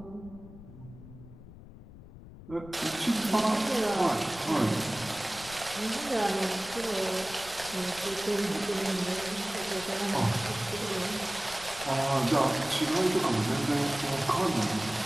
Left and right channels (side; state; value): left; noise; rumble, 17 dB below the sound